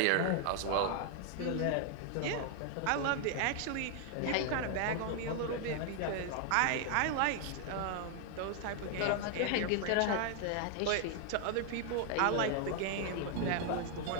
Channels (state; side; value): different; both; correlation 0.00